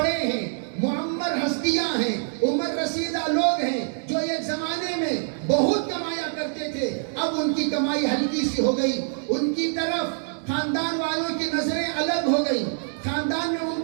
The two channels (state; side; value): silent; left; digital silence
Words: ہیں، معمر ہستیاں ہیں، عمر رسیدہ لوگ ہیں جو ایک زمانے میں بہت کمایا کرتے تھے، اب ان کی کمائی ہلکی سی ہو گئی، ان کی طرف خاندان والوں کی نظریں الگ ہو گئی، خاندان